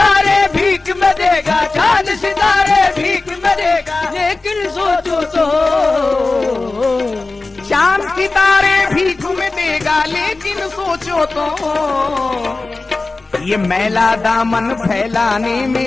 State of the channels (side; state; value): right; quieter; 3.5 dB